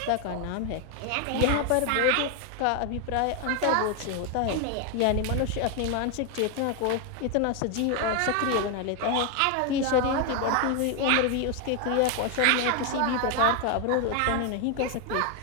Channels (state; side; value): different; both; correlation 0.01